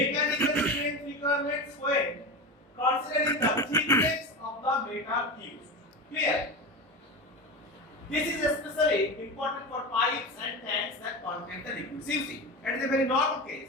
strength requirements when considering the thickness of the metal used. Clear? This is especially important for pipes and tanks that contain the liquids. You see, it is a very normal case.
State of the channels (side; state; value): both; normal; correlation 0.24